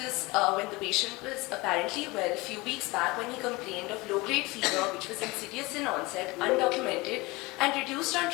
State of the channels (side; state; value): right; quieter; 23.2 dB